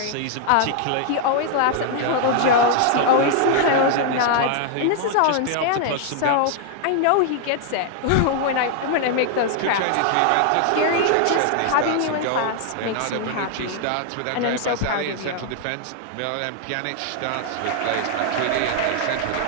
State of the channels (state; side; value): different; both; correlation 0.00